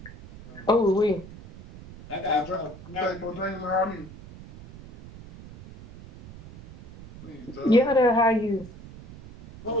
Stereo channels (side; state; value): right; noise; rumble, 17 dB below the sound